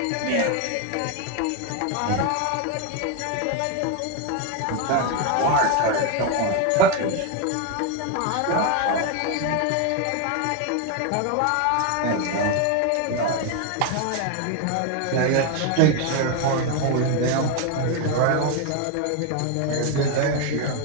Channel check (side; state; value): both; different; correlation 0.01